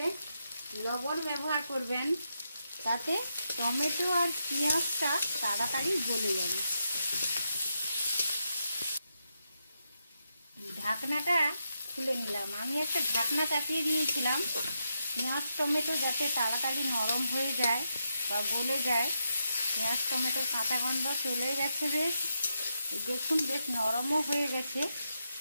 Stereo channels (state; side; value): inverted; both; correlation -0.83